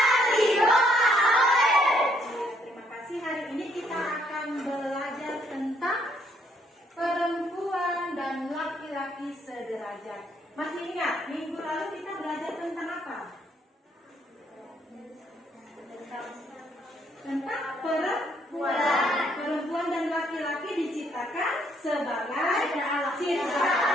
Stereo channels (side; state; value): both; normal; correlation 0.69